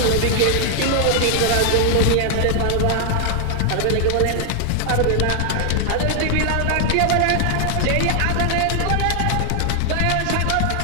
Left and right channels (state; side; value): different; both; correlation 0.00